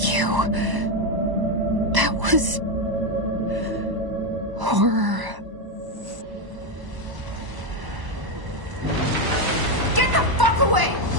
you. That was... horror. Get the fuck away!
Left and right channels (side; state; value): left; late; 1.0 ms